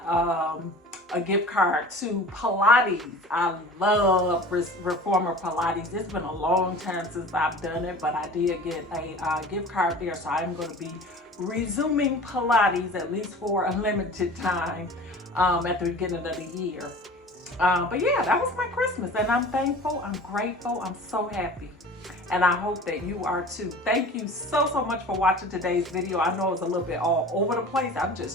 a gift card to Pilates. I love Reformer Pilates. It's been a long time since I've done it, but I did get a gift card there, so I'm going to be resuming Pilates at least for a limited time at the beginning of the year. But yeah, that was my Christmas, and I'm thankful, I'm grateful, I'm so happy. And I hope that you are too. Thank you so much for watching today's video. I know it's a little bit all over the place. I'm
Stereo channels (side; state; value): both; normal; correlation 0.41